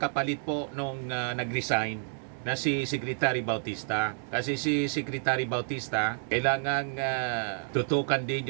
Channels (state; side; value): silent; left; digital silence